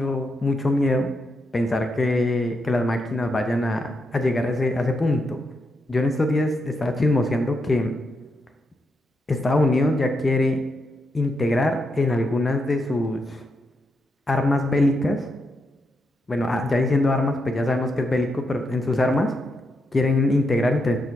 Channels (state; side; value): normal; both; correlation 0.82